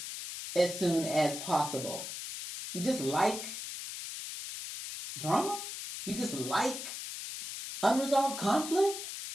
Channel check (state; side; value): noise; left; hiss, 8 dB below the sound